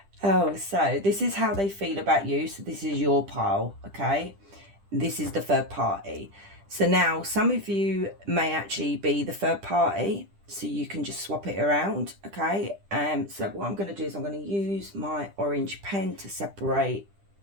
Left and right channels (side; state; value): left; late; 10 ms